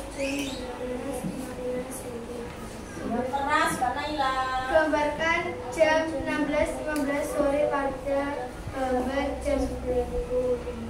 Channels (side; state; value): both; identical; correlation 1.00